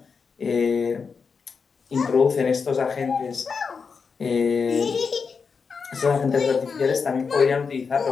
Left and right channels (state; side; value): quieter; right; 5.4 dB